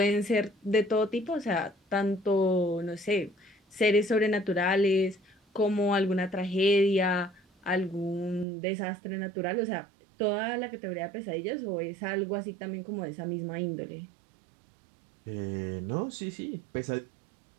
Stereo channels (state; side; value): drops out; left; at 8.5 s